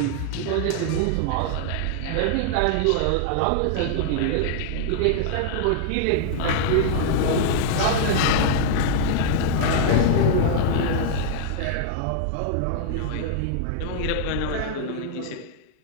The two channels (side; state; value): both; different; correlation -0.01